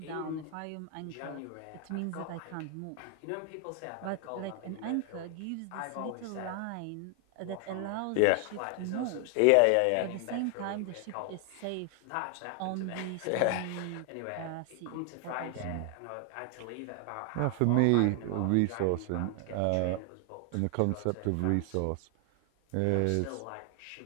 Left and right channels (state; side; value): different; both; correlation 0.00